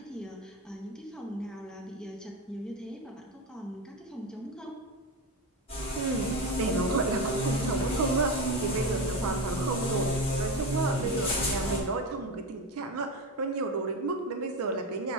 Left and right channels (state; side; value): normal; both; correlation 0.19